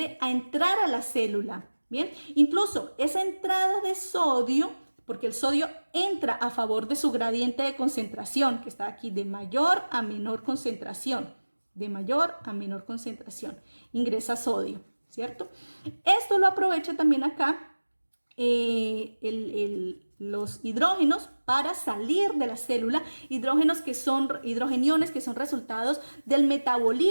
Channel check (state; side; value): inverted; both; correlation -1.00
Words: a entrar a la célula. Bien, incluso esa entrada de sodio, porque el sodio entra a favor de su gradiente de concentración, que está aquí de mayor a menor concentración, de mayor a menor concentración, ingresa sodio, ¿cierto? Esto lo aprovecha también acá los hidrógenos para salir de la célula, hidrogeniones que son resultados del